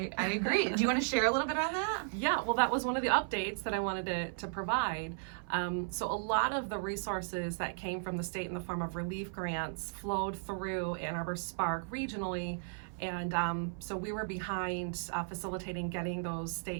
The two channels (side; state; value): left; silent; 54 dB below the other